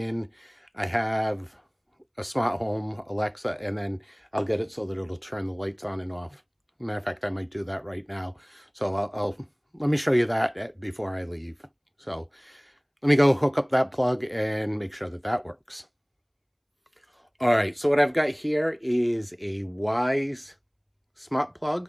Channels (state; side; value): identical; both; correlation 1.00